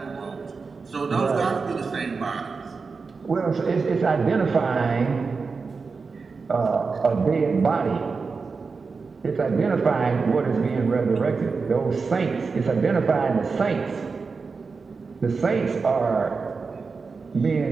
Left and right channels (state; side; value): quieter; left; 4.7 dB